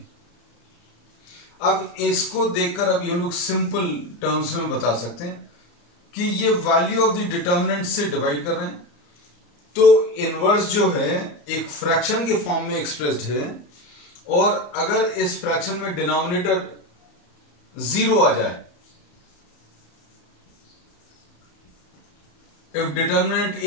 अब इसको देखकर अभी हम लोग सिंपल टर्म्स में बता सकते हैं कि ये वैल्यू ऑफ द डिटर्मिनेंट से डिवाइड कर रहे हैं, तो इनवर्स जो है एक फ्रैक्शन के फॉर्म में एक्सप्रेस्ड है और अगर इस फ्रैक्शन में डिनोमिनेटर 0 आ जाए, if determinant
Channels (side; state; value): right; late; 34 ms